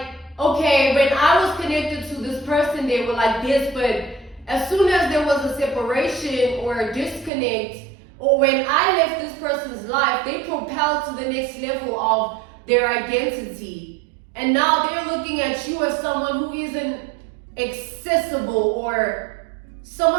okay, when I was connected to this person, they were like this, but as soon as there was a separation or a disconnect, or when I left this person's life, they propelled to the next level of their identity. And now they're looking at you as someone who isn't accessible, or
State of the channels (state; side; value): drops out; left; at 7.3 s